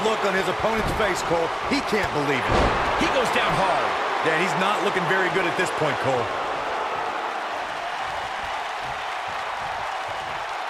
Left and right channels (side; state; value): both; identical; correlation 1.00